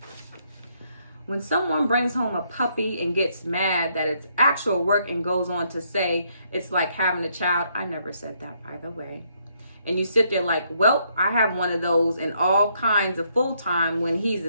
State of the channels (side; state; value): both; inverted; correlation -0.72